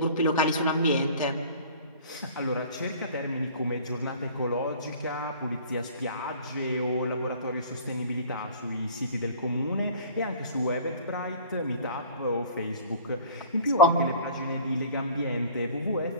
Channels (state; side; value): inverted; both; correlation -0.47